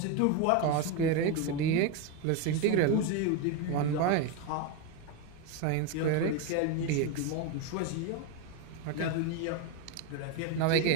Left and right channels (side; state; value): both; different; correlation 0.03